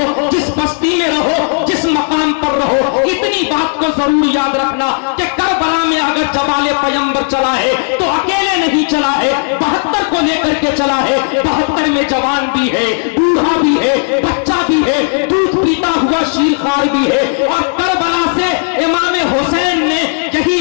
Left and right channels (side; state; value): right; silent; 60 dB below the other